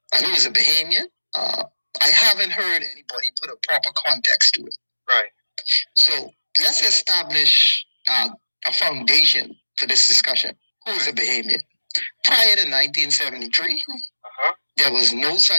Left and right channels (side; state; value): both; inverted; correlation -1.00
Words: and who's a Bahamian, I haven't heard anybody put a proper context to it. Right. So let's establish a foundation for this discussion. Who is a Bahamian? Prior to 1973, there was no